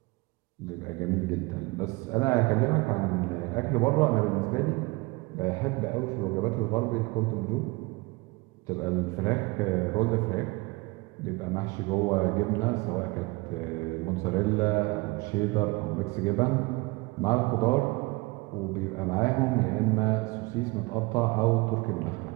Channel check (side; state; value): left; quieter; 24.5 dB